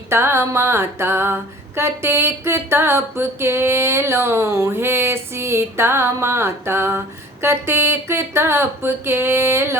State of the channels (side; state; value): both; normal; correlation 0.47